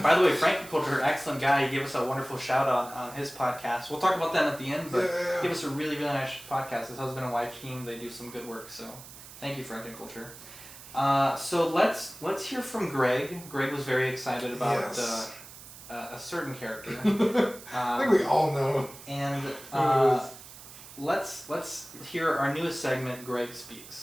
the way, Frankie Culture, excellent guy. He gave us a wonderful shout out on his podcast. We'll talk about them at the end, but give us a really, really nice podcast. His husband and wife team, they do some good work. So thank you, Frankie Culture. So let's hear from Greg. Greg was very excited about a certain character. I think we all know. And let's hear our newest segment, Greg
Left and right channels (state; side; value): noise; right; hiss, 16 dB below the sound